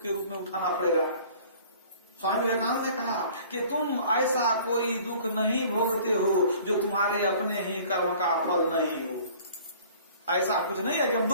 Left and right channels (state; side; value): inverted; both; correlation -0.50